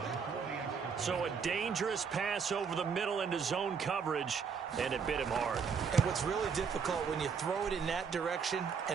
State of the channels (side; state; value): left; quieter; 6.2 dB